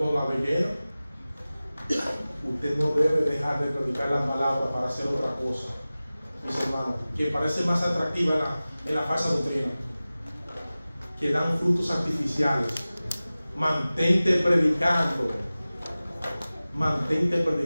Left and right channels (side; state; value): both; inverted; correlation -0.97